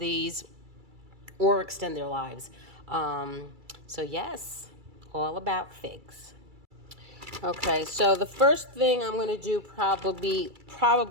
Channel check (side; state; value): left; late; 2.3 ms